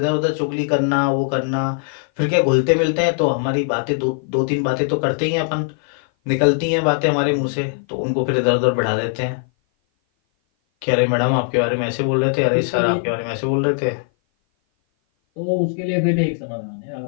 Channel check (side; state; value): right; silent; 57 dB below the other